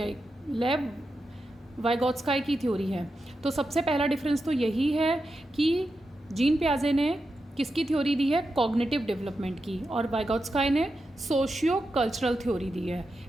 वाइगॉट्स्काय की थ्योरी है। तो सबसे पहला डिफरेंस तो यही है कि जीन पियाजे ने किसकी थ्योरी दी है? कॉग्निटिव डेवलपमेंट की। और वाइगॉट्स्काय ने सोशियो कल्चरल थ्योरी दी है।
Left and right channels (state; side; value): normal; both; correlation 0.88